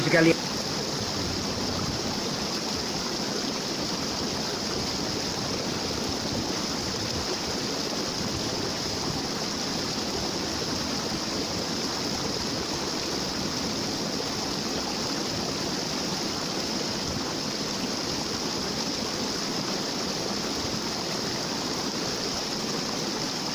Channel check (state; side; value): identical; both; correlation 1.00